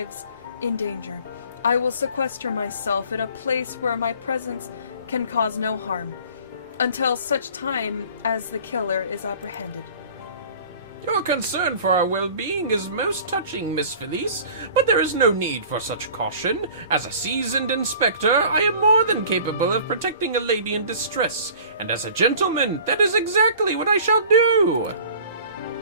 in danger. I will sequester myself in a place where my presence can cause no harm, until such time as the killer is apprehended. Your concern for our well-being is most touching, Miss Felice, but there is no need for such caution. As a seasoned inspector, I am more than capable of protecting a lady in distress, and as a gentleman, that is exactly what I shall do.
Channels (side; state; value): both; inverted; correlation -0.46